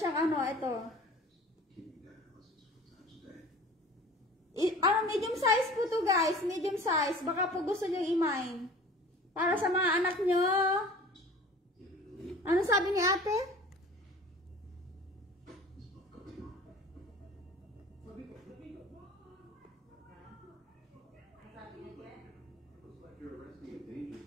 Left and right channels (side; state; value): both; normal; correlation 0.43